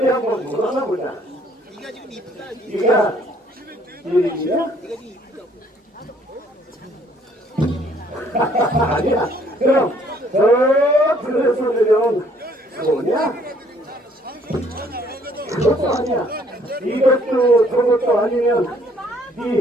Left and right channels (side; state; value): both; normal; correlation 0.62